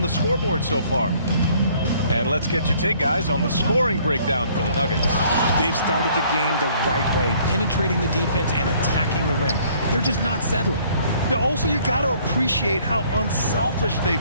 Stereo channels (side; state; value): both; inverted; correlation -0.60